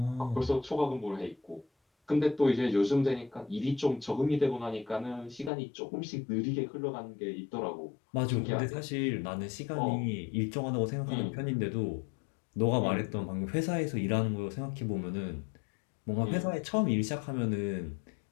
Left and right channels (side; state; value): right; drops out; at 5.5 s